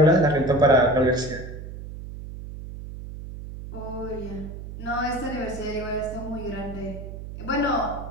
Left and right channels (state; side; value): noise; right; hum, 11 dB below the sound